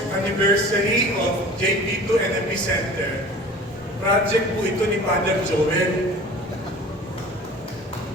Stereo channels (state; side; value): normal; both; correlation 0.42